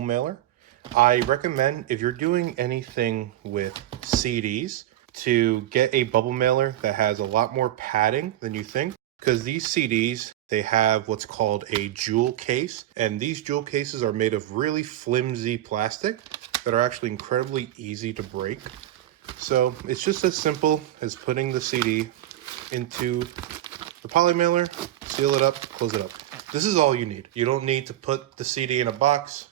I recommend if you're doing anything with CDs to get a bubble mailer that has a lot more padding than you think, because these CDs, they have what's called a jewel case, and these jewel cases are made of really flimsy plastic that are actually incredibly easy to break. So it's just as simple as putting the CD into the poly mailer, seal it up, close it up. This is all you need. You don't need to put the CD in a box.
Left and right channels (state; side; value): quieter; left; 13.5 dB